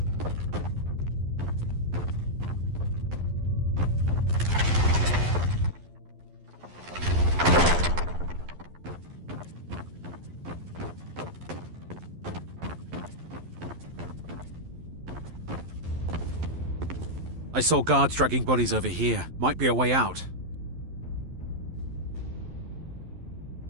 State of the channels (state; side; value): late; left; 11 ms